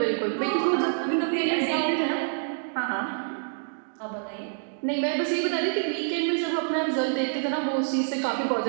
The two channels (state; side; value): silent; left; digital silence